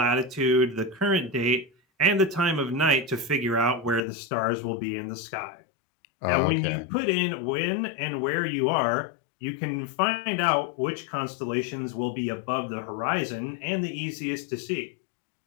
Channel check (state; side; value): drops out; right; at 4.0 s